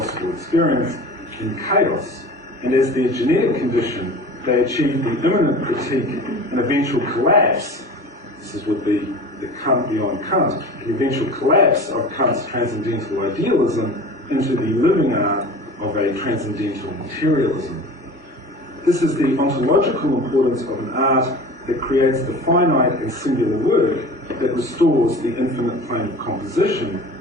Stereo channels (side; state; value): both; normal; correlation 0.38